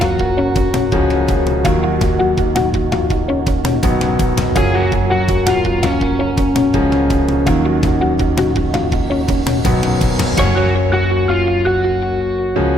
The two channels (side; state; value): both; normal; correlation 0.76